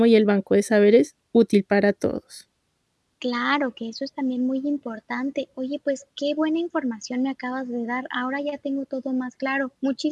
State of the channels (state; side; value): identical; both; correlation 1.00